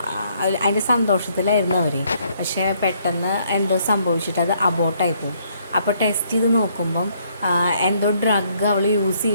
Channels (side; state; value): both; inverted; correlation -0.68